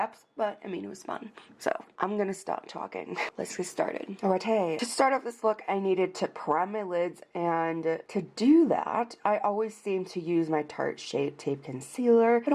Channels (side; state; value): both; identical; correlation 1.00